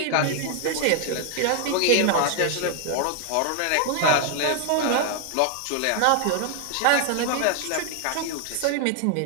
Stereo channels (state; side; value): different; both; correlation 0.00